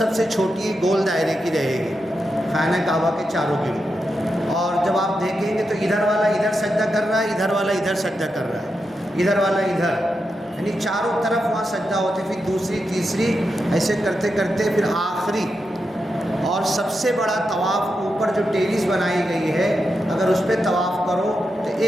سے چھوٹی گول دائرے کی رہے گی، خانہ کعبہ کے چاروں گرد۔ اور جب آپ دیکھیں گے تو ادھر والا ادھر سجدہ کر رہا ہے، ادھر والا ادھر سجدہ کر رہا ہے، ادھر والا ادھر، یعنی چاروں طرف وہاں سجدہ ہوتے، پھر دوسری تیسری ایسے کرتے کرتے پھر آخری اور سب سے بڑا طواف اوپر جو ٹیریس بنائی گئی ہے، اگر اس پہ طواف کرو تو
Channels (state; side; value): normal; both; correlation 0.87